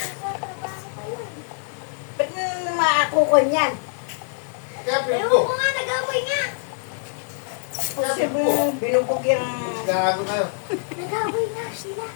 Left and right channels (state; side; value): silent; right; digital silence